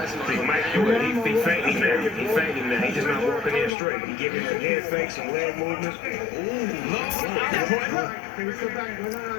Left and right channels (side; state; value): right; drops out; at 3.8 s